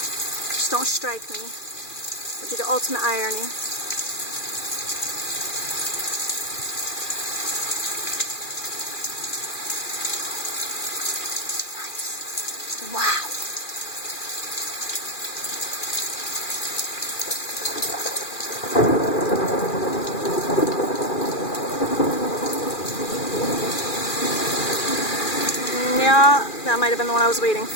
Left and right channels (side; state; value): right; late; 2.4 ms